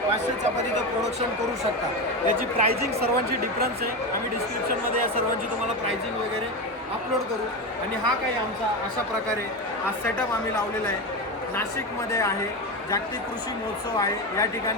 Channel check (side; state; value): both; normal; correlation 0.18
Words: 500 चपातीचं प्रोडक्शन करू शकता. याची प्राइसिंग सर्वांची डिफरन्स आहे. आम्ही डिस्क्रिप्शनमध्ये या सर्वांची तुम्हाला प्राइसिंग वगैरे अपलोड करू. आणि हा काही आमचा अशा प्रकारे हा सेटअप आम्ही लावलेला आहे. नाशिकमध्ये आहे, जागतिक कृषी महोत्सव आहे, या